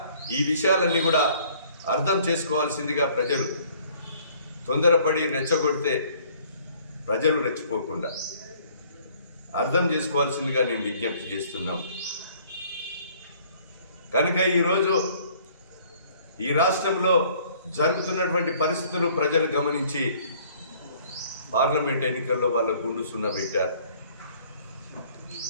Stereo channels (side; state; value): both; inverted; correlation -0.58